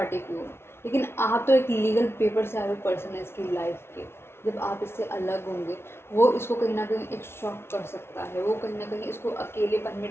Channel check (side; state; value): right; late; 0.12 ms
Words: की हो, लेकिन आप तो एक लीगल पेपर से आए हुए पर्सन है इसकी लाइफ के। जब आप इससे अलग होंगे, वो इसको कहीं ना कहीं एक शॉक कर सकता है, वो कहीं ना कहीं इसको अकेलेपन में